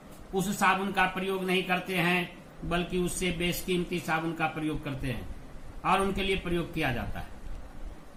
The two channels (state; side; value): identical; both; correlation 1.00